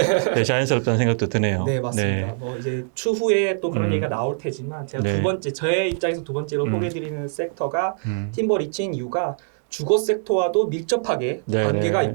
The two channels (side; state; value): left; silent; 61 dB below the other